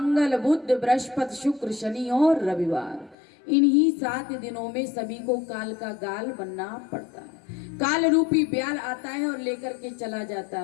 बुध, बृहस्पति, शुक्र, शनि और रविवार। इन्हीं 7 दिनों में सभी को काल का गाल बनना पड़ता है। काल रूपी ब्याल आता है और लेकर के चला जाता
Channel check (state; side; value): drops out; right; at 3.2 s